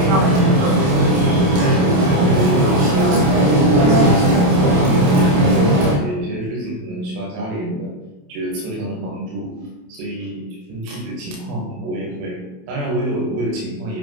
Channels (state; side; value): late; left; 28 ms